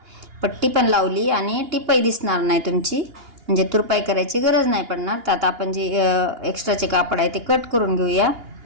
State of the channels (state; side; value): late; left; 2.8 ms